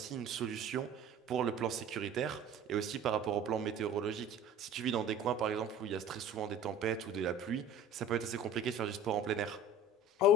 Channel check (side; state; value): both; normal; correlation 0.43